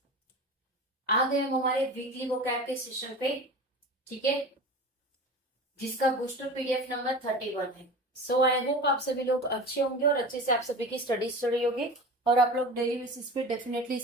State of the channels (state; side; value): normal; both; correlation 0.33